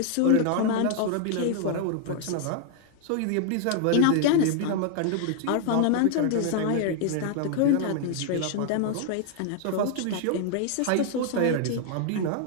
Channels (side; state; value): both; different; correlation 0.00